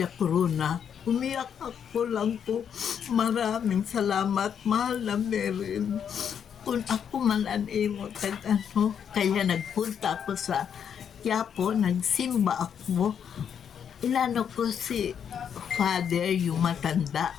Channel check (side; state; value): right; quieter; 8.0 dB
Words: Corona. Umiyak ako lang po. Maraming salamat, mahal na Merin. Kung ako man kaya nagpunta ako sa Quiapo, nagsimba ako. Inano ko si Father, yung matanda.